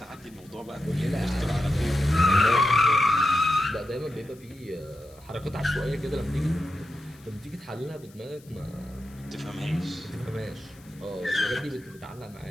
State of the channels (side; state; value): left; noise; hiss, 27 dB below the sound